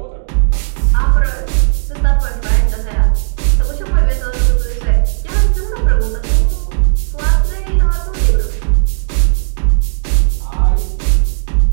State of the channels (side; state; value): left; silent; digital silence